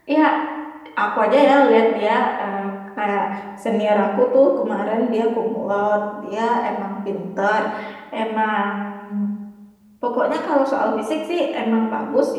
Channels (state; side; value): identical; both; correlation 1.00